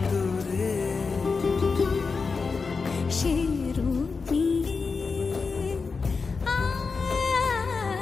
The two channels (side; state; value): right; quieter; 4.7 dB